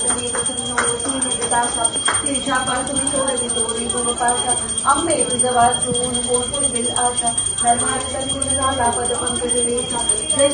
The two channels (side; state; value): both; identical; correlation 1.00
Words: प्रसन्नवतीनिदासा तिरछापासुनी सोडवी तोरी गोपाशा अंबे तुझं वाचून कोण दिल आशा धर्मार्थ झाला पद पंकज रेखा जय